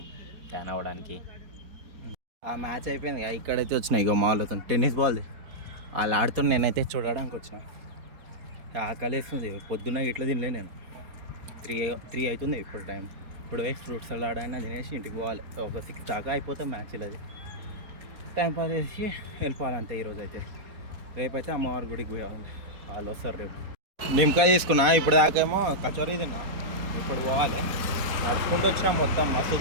ట్యాన్ అవ్వడానికి. ఆ మ్యాచ్ అయిపోయింది. ఇక్కడైతే వచ్చినాయి ఇక మాల్ అవుతాను టెన్నిస్ బాల్ది. వాళ్ళు ఆడుతున్నా, నేనైతే చూడడానికి వచ్చిన. ఆకలి వేస్తుంది. పొద్దున్న ఇట్లా తినలే నేను. 3 అవుతుంది ఇప్పుడు టైం. ఇప్పుడు వేసి ఫ్రూట్స్ సలాడ్ అయినా తినేసి ఇంటికి పోవాలి. ఒక 6 దాకా అయిపోతే మ్యాచ్. అది టైం పాస్ చేసి వెళ్ళిపోవాలంతే. ఈరోజు అయితే రేపైతే అమ్మవారి గుడికి పోవాలి. వాళ్ళు వస్తారు రేపు. నిమ్మకాయ తీసుకున్నా. ఇప్పుడు దాకేమో కచోరీ తిన్నా. ఇప్పుడు పోవాలి. నడుచుకుంటూ వచ్చినా మొత్తం మస్తు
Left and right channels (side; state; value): left; late; 4.2 ms